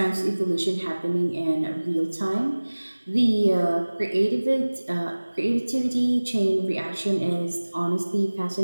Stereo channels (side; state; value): both; inverted; correlation -1.00